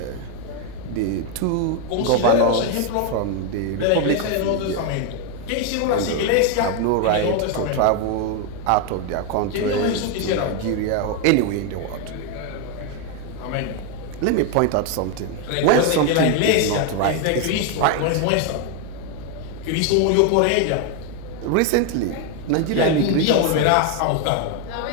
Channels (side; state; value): both; different; correlation 0.01